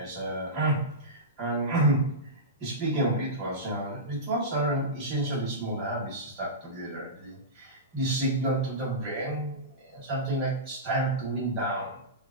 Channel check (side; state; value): both; normal; correlation -0.15